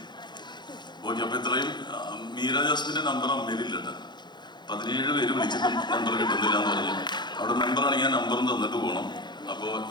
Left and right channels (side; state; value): right; late; 0.21 ms